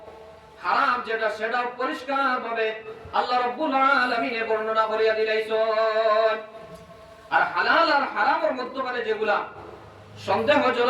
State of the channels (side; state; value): both; identical; correlation 1.00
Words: হারাম যেটা সেটা পরিষ্কার ভাবে আল্লাহ রাব্বুল আলামিন বর্ণনা করিয়া দিলেন আর হালাল আর হারামের মধ্যে যেগুলা